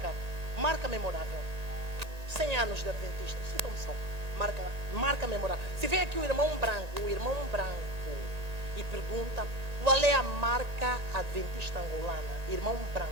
Marca memorável. 100 anos de Adventista. Citam-me só. Marca memorável. Se vem aqui o irmão branco e pergunta qual é a marca adventista angolana. Irmão branco.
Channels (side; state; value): left; late; 1.9 ms